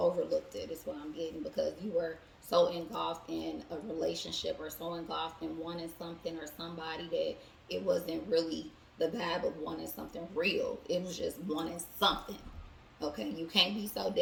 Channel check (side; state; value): both; identical; correlation 1.00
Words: it is what I'm getting, because you were so engulfed in a relationship or so engulfed in wanting something or somebody that it wasn't really the vibe of wanting something real. It was just wanting something. Okay, you can't be so